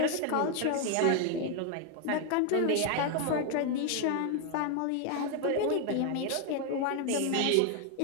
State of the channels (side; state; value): both; different; correlation 0.01